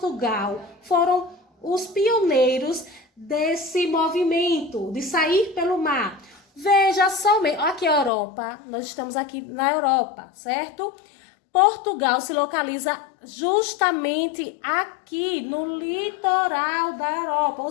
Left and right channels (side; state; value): right; drops out; at 8.1 s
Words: foram os pioneiros desse movimento, de sair pelo mar? Veja somente, aqui a Europa, nós estamos aqui na Europa, certo? Portugal se localiza justamente aqui no litoral da Europa, ou